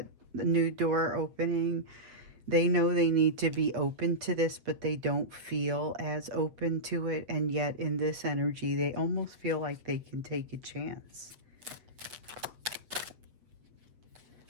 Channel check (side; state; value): left; late; 7.9 ms